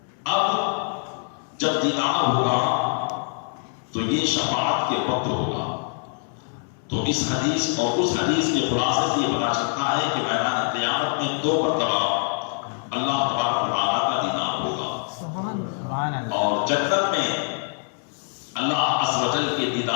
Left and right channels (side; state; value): right; silent; 57 dB below the other